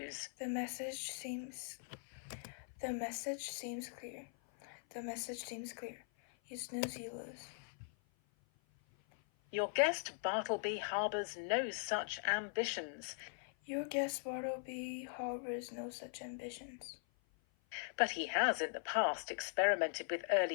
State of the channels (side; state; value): right; silent; 50 dB below the other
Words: the message seems clear. The message seems clear. You snooze, you lose. Your guest Bartleby harbours no such ambitions. Your guest Bartleby harbors no such ambitions. But he has in the past experimented with